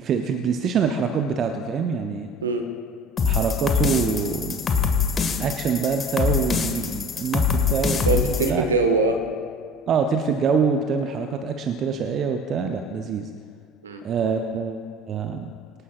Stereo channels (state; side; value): normal; both; correlation 0.42